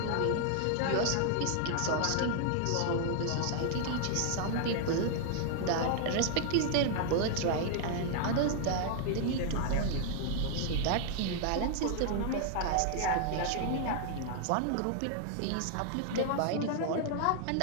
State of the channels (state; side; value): different; both; correlation 0.00